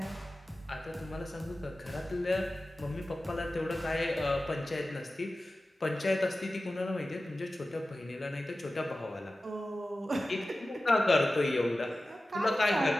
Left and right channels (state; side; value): normal; both; correlation 0.95